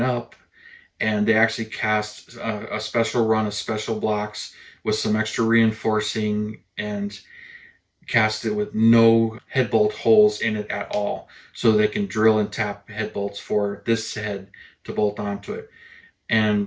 up, and they actually cast a special run of special blocks with some extra reinforcing, and cast it with no head bolt holes in it at all, so they can drill and tap head bolts for this head to bolt onto it.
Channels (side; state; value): both; identical; correlation 1.00